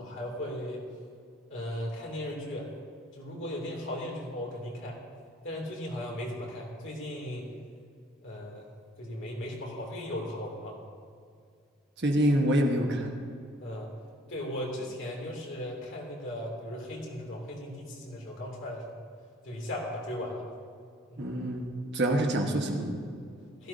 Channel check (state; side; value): normal; both; correlation 0.58